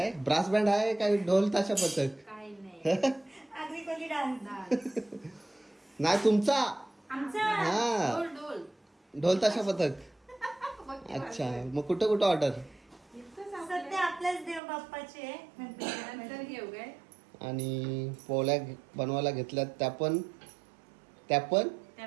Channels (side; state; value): left; drops out; at 14.6 s